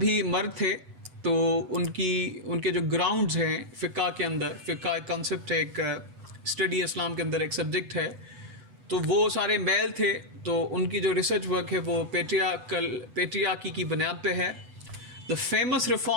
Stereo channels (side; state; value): left; late; 8.1 ms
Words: मर्द थे, तो उनके जो ग्राउंड्स हैं फ़िक़्ह के अंदर, फ़िक़्ह एक कॉन्सेप्ट है, एक स्टडी इस्लाम के अंदर एक सब्जेक्ट है, तो वो सारे मेल थे. तो उनकी जो रिसर्च वर्क है वो पेट्रियार्की की बुनियाद पे है. The famous